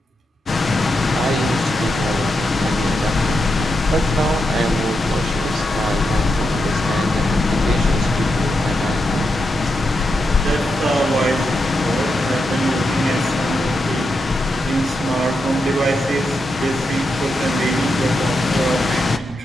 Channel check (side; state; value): both; normal; correlation 0.85